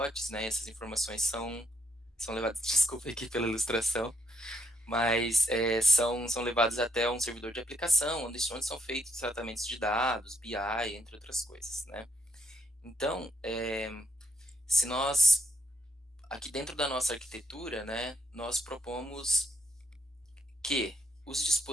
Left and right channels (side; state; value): both; normal; correlation 0.75